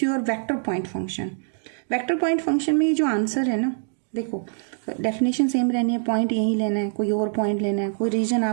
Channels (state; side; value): silent; left; digital silence